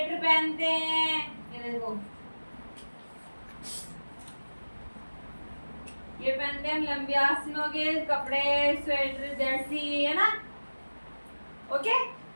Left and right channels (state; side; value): inverted; both; correlation -1.00